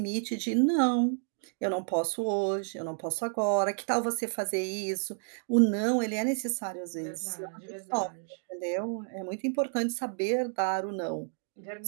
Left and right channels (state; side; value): silent; left; 57 dB below the other